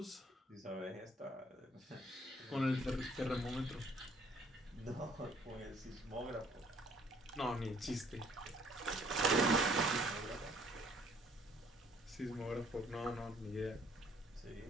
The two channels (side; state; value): both; normal; correlation 0.61